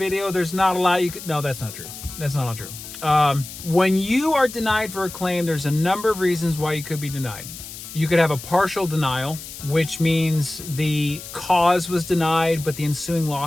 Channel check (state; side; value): noise; left; hiss, 12 dB below the sound